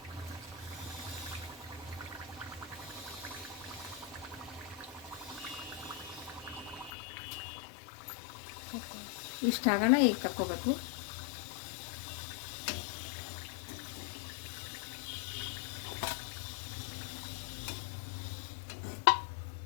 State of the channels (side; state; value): right; drops out; at 6.9 s